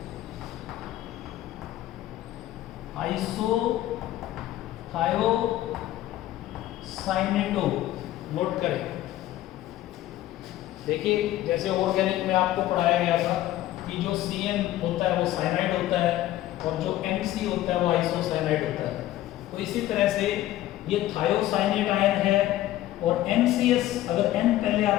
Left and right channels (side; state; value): right; quieter; 14.5 dB